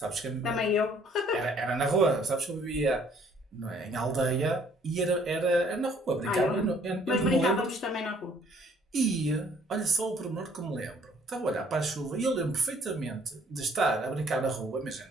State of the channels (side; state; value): both; normal; correlation 0.60